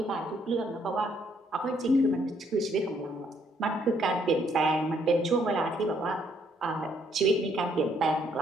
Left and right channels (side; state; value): both; normal; correlation 0.68